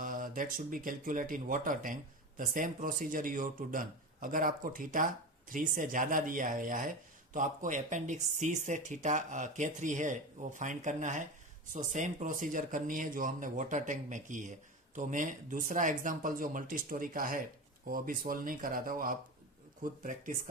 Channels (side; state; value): both; normal; correlation 0.24